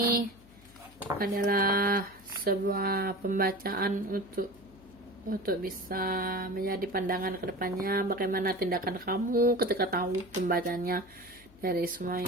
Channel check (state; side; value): noise; left; hum, 25 dB below the sound